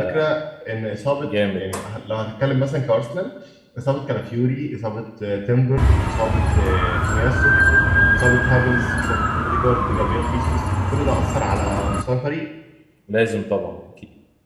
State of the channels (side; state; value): both; identical; correlation 1.00